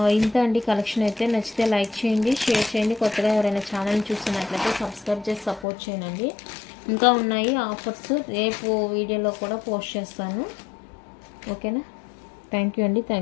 ఇంత అండి కలెక్షన్ అయితే. నచ్చితే లైక్ చేయండి, షేర్ చేయండి. కొత్తగా ఎవరైనా ఛానల్ చూస్తున్నట్లయితే సబ్స్క్రైబ్ చేసి సపోర్ట్ చేయండి. ఇంకా ఉన్నాయి ఆఫర్స్, రేపు వీడియోలో కూడా పోస్ట్ చేస్తాను. ఓకేనా, థ్యాంక్ యూ అండి.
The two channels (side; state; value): right; drops out; at 5.7 s